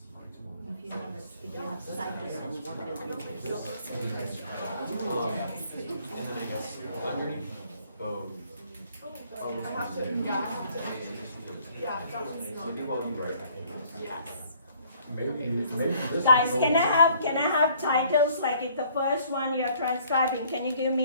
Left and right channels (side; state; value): both; inverted; correlation -0.60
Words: If you have scientists and what will be And then I guess underneath both. Oh, this one's there. Maybe while you write, I can. Yes. maybe this. Guys, is can I have titles, like if the first one you're transcribing, can you give